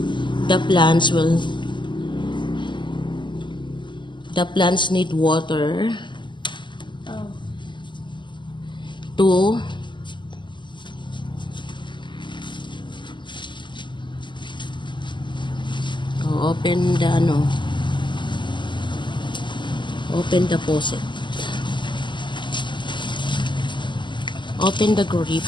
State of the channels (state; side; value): late; right; 0.23 ms